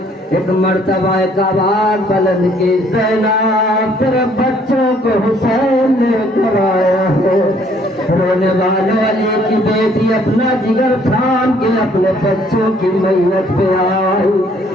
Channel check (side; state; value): both; normal; correlation 0.63